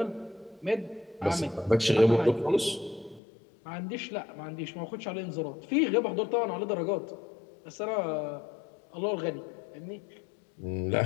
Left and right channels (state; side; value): drops out; right; at 3.2 s